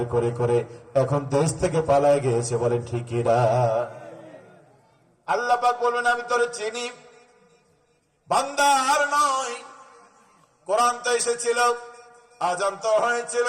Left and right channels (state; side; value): identical; both; correlation 1.00